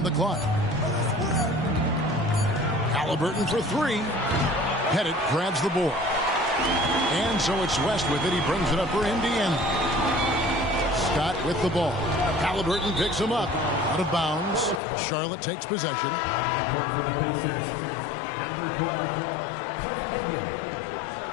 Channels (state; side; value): drops out; right; at 14.8 s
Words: the clock. Halliburton for 3. Pettit grabs the board. And so it's West with it. He brings it up for Indiana. Scott with the ball. Halliburton picks him up. Out of bounds. Charlotte takes possession. On the court for the Pacers, number 12, Cliff Hagan.